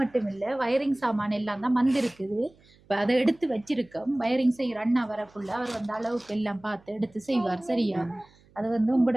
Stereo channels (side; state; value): right; noise; hum, 29 dB below the sound